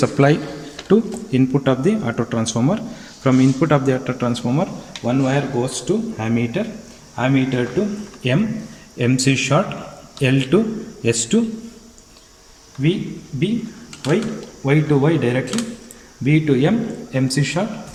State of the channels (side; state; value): both; identical; correlation 1.00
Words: to input of the auto transformer. From input of the auto transformer, one wire goes to ammeter, ammeter to M, MC short, L to S2, V, B, Y to Y directly, B to M, MC short,